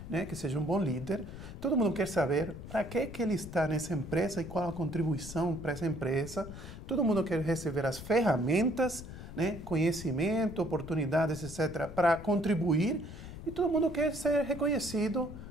seja um bom líder. Todo mundo quer saber para que ele está nessa empresa e qual a contribuição para essa empresa. Todo mundo quer receber as ferramentas, né, conhecimento, oportunidades, etc., para contribuir. E todo mundo quer ser reconhecido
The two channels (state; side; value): noise; left; rumble, 12 dB below the sound